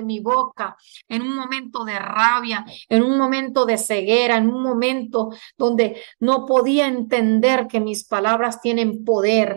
mi boca en un momento de rabia, en un momento de ceguera, en un momento donde no podía entender que mis palabras tienen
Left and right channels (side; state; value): left; silent; digital silence